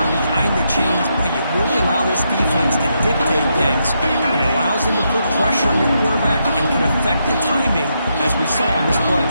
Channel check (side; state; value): both; inverted; correlation -0.80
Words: behind the chains, boy, you really allow this defense to dictate things. It allows them to put pressure on your quarterback and can affect the timing, as we saw on this play.